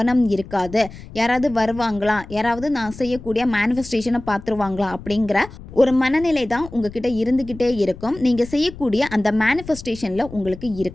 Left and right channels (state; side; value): noise; left; rumble, 15 dB below the sound